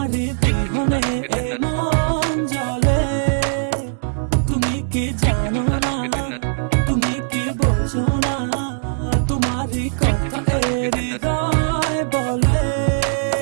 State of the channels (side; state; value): left; silent; digital silence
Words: বিহনে এ মন জ্বলে। তুমি কি জানো না, তুমি কি বোঝো না, তোমার কথা হৃদয় বলে।